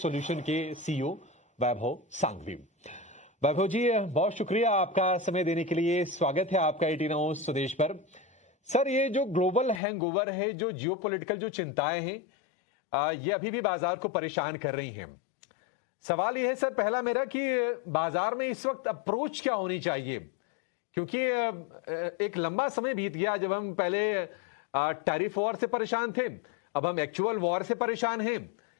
के सीईओ वैभव सांघवी। वैभव जी, बहुत शुक्रिया आपका समय देने के लिए। स्वागत है आपका 18 आवर्स स्वदेश पर। सर, ये जो ग्लोबल हैंगओवर है, जो जियोपॉलिटिकल जो चिंताएं हैं, ये अभी भी बाजार को परेशान कर रही हैं। सवाल ये है सर पहला मेरा कि बाजार में इस वक्त अप्रोच क्या होनी चाहिए, क्योंकि एक लंबा समय बीत गया जब हम पहले टैरिफ वॉर से परेशान थे, अब हम एक्चुअल वॉर से परेशान हैं,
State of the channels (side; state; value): right; drops out; at 9.8 s